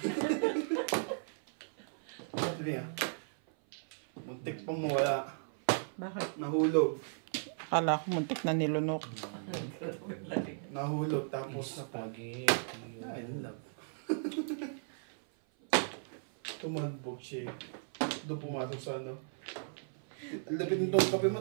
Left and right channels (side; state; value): left; silent; 54 dB below the other